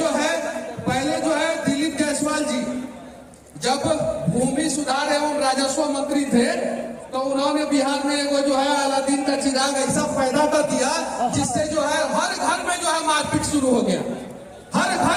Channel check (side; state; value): both; identical; correlation 1.00